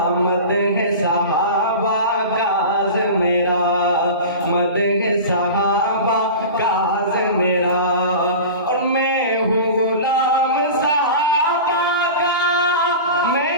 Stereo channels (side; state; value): both; inverted; correlation -0.33